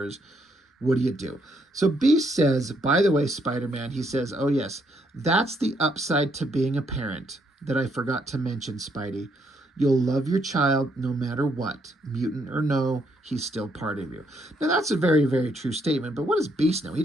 What do you do? So Beast says, by the way, Spider-Man, he says, oh yes, that's the upside to being a parent that I forgot to mention, Spidey. You'll love your child no matter what, mutant or no, he's still part of you. Now that's a very, very true statement, but what does Beast know? He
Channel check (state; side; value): normal; both; correlation 0.73